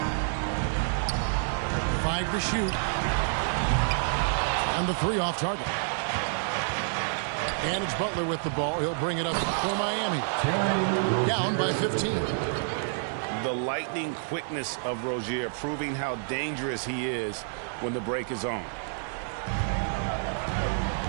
5 to shoot. And the 3 off target. And it's Butler with the ball. He'll bring it up for Miami. Down by 15. The lightning quickness of Rozier proving how dangerous he is when the break is on.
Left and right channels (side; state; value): left; silent; digital silence